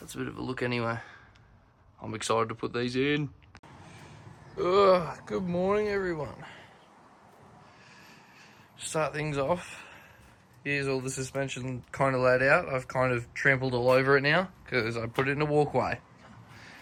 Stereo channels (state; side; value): identical; both; correlation 1.00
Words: that's a bit of a look anyway. I'm excited to put these in. Good morning, everyone. Start things off. Here's all the suspension kind of laid out. I've kind of trampled all over it now because I put it in a walkway.